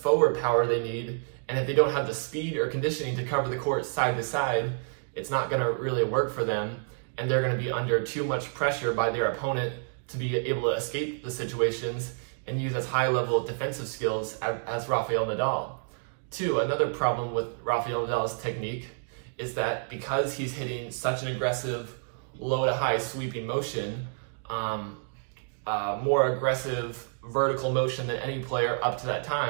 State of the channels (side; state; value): left; silent; digital silence